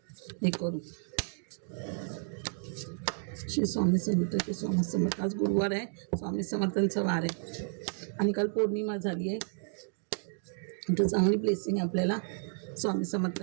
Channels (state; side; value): silent; left; 56 dB below the other